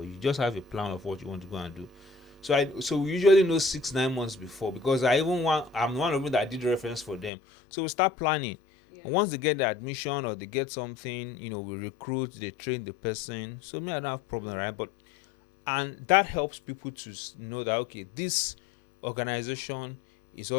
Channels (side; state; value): right; drops out; at 7.3 s